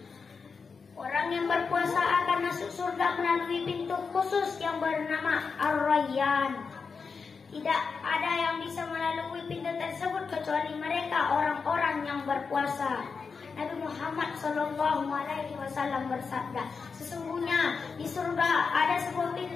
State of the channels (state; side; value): quieter; right; 5.2 dB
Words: orang yang berpuasa akan masuk surga melalui pintu khusus yang bernama Ar-Rayyan. Tidak ada yang bisa melalui pintu tersebut kecuali mereka orang-orang yang berpuasa. Nabi Muhammad SAW bersabda, "Sesungguhnya di surga ada sebuah